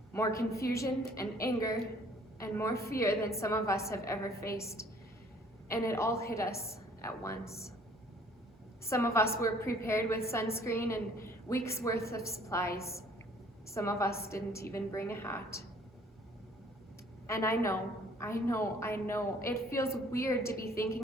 more confusion and anger, and more fear than some of us have ever faced, and it all hit us at once. Some of us were prepared with sunscreen and weeks worth of supplies. Some of us didn't even bring a hat. And I know, it feels weird to be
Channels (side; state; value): both; normal; correlation 0.57